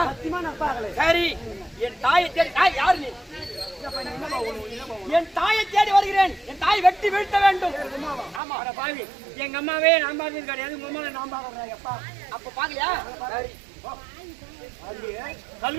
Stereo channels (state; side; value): drops out; left; at 8.4 s